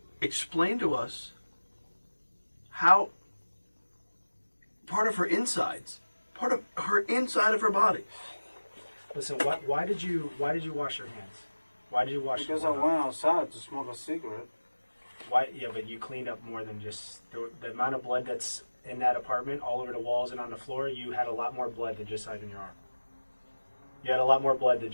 explain to us how part of her insides, part of her inside of her body. Listen, why did you wash your hands? Why did you wash Because I your hands? went outside to smoke a cigarette. Why? Yeah, but you cleaned up more than just the amount of blood that's in that apartment, all over the walls and on the floor. You had a lot more blood than just on your arm. You had a lot more blood than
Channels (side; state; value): both; inverted; correlation -1.00